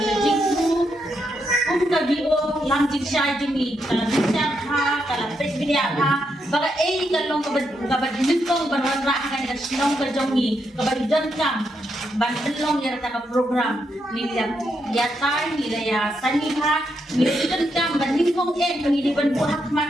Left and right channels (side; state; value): both; normal; correlation 0.81